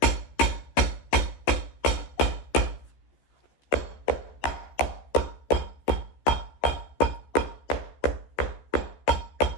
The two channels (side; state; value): right; late; 14 ms